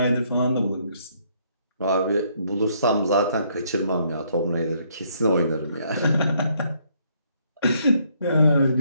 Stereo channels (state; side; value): inverted; both; correlation -0.69